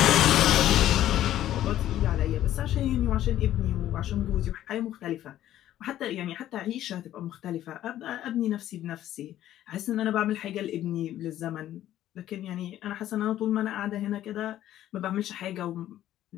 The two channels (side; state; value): right; quieter; 12.7 dB